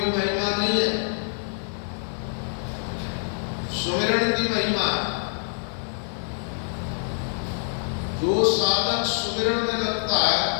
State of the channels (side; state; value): right; silent; digital silence